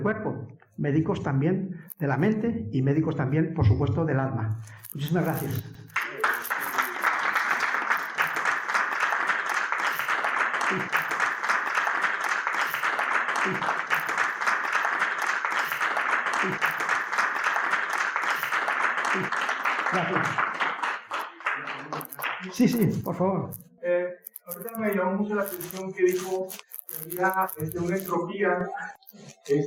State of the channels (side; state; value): both; identical; correlation 1.00